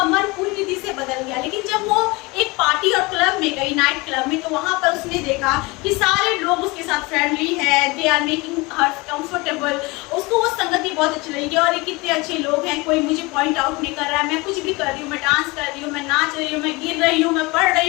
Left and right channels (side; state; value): right; quieter; 24.6 dB